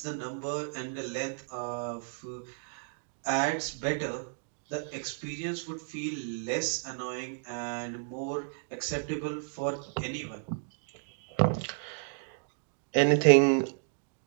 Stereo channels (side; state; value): left; silent; digital silence